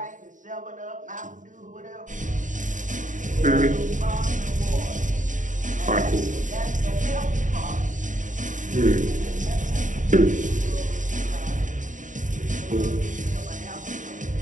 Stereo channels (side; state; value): left; late; 0.37 ms